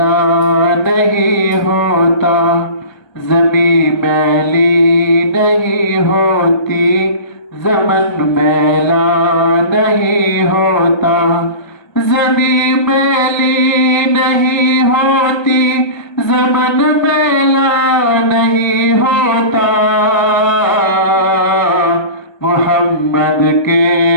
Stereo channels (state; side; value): late; right; 1.3 ms